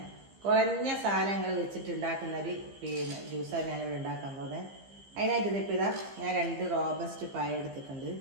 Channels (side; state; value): left; late; 15 ms